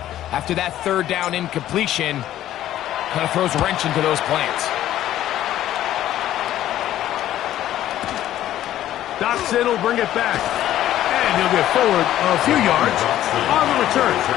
after that 3rd down incompletion, kind of throws a wrench into those plans. Dotson will bring it back. And he'll get forward a few yards on the return.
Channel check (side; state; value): right; quieter; 12.8 dB